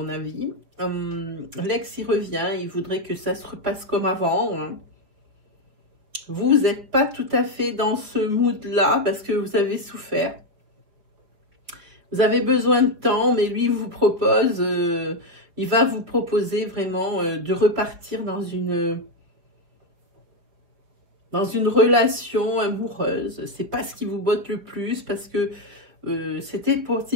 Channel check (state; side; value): late; left; 5.1 ms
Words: avis. L'ex il revient, il voudrait que ça se repasse comme avant. Hein. Vous n'êtes pas tout à fait dans ce mood là parce que vous avez souffert. Vous avez besoin de temps, mais lui vous propose, il va vous proposer vraiment de repartir dans une relation amoureuse. C'est pas ce qui vous botte le plus parce que c'était